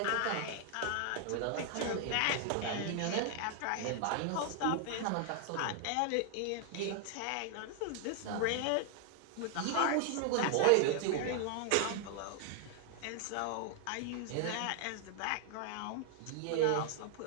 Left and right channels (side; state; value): both; different; correlation 0.00